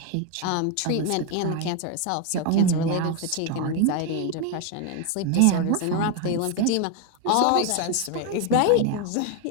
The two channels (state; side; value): different; both; correlation 0.01